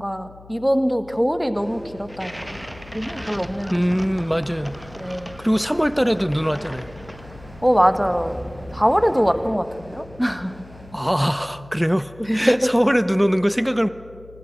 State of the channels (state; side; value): noise; left; hum, 21 dB below the sound